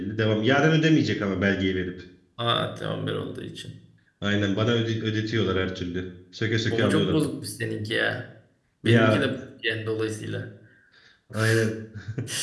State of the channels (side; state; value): both; identical; correlation 1.00